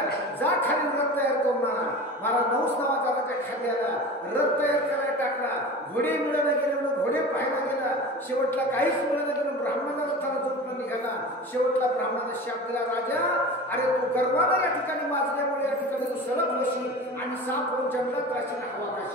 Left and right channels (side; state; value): both; normal; correlation 0.34